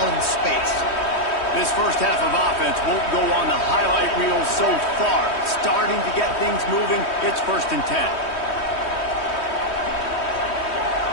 in space. This first half of offense won't go on the highlight reel so far. Starting to get things moving, it's 1st and 10.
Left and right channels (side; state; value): right; late; 3.1 ms